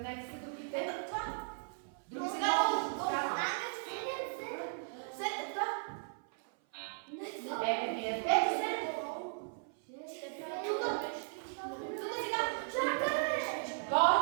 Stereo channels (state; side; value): silent; left; 53 dB below the other